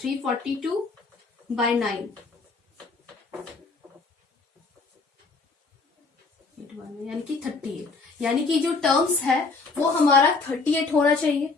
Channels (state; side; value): quieter; right; 4.0 dB